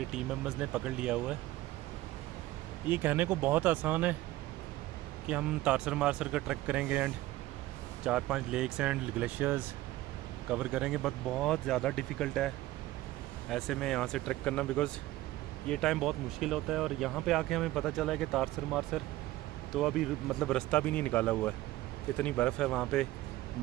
टीम मेंबर्स ने पकड़ लिया हुआ है। ये कहने को बहुत आसान है कि हम तारसर मारसर का ट्रैक करेंगे and 4-5 lakes and glaciers cover करेंगे, बट बहुत ज़्यादा डिफ़िकल्ट है ऐसे में यहाँ से ट्रैक करना, बिकॉज़ ये टाइम बहुत मुश्किल होता है। और यहाँ पे आके हमें पता चला है कि तारसर मारसर तो अभी मतलब रास्ता भी नहीं निकाला हुआ है, इतनी बर्फ़ है वहाँ पे।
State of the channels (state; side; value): quieter; left; 16.6 dB